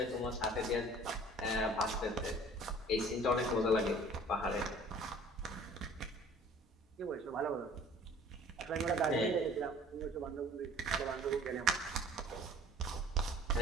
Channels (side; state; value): both; normal; correlation 0.50